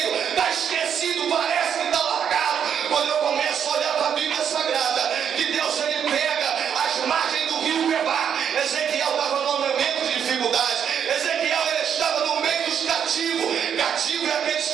está esquecido, parece que está largado. Quando eu começo a olhar para a Bíblia Sagrada, que Deus, ele pega as margens do rio Quebar. Ezequiel estava num momento de dificuldade. Ezequiel, ele estava no meio dos cativos. Cativo é aqueles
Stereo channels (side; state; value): left; quieter; 8.2 dB